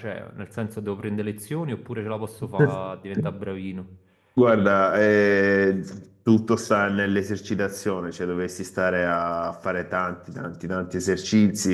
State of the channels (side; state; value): both; identical; correlation 1.00